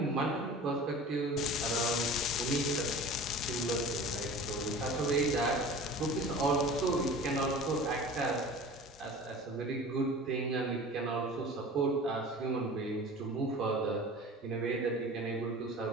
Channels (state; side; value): normal; both; correlation 0.39